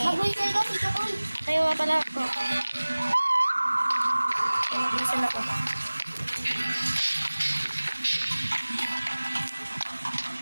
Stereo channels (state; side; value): inverted; both; correlation -1.00